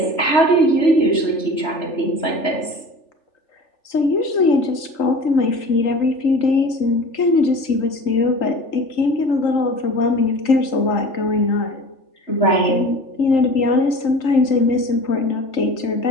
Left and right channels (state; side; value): late; right; 3.4 ms